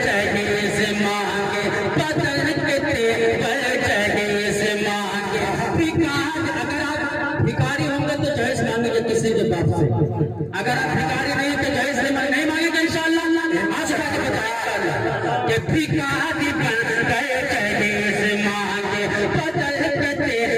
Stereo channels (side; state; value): both; identical; correlation 1.00